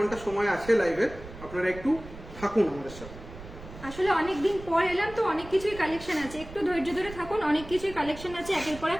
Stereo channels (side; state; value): right; noise; rumble, 15 dB below the sound